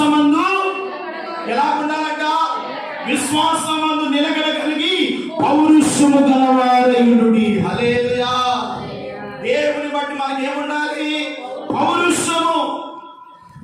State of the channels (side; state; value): both; identical; correlation 1.00